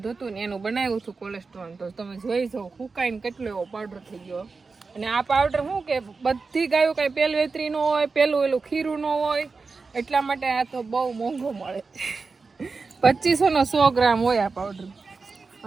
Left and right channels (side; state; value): left; quieter; 4.4 dB